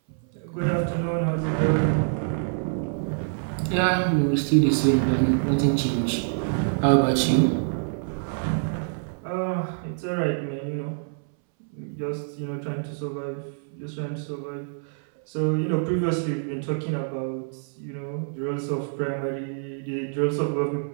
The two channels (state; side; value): silent; left; 61 dB below the other